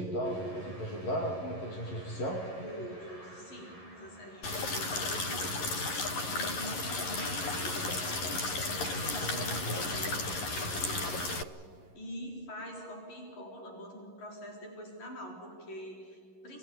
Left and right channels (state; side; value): late; right; 11 ms